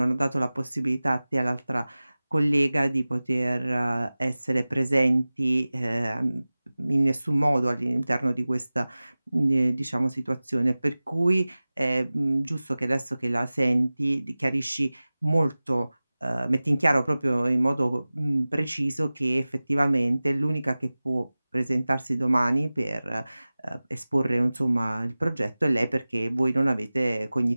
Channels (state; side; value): inverted; both; correlation -0.98